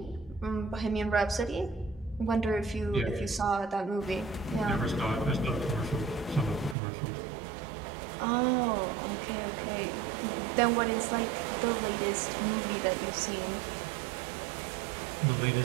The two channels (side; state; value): left; drops out; at 6.8 s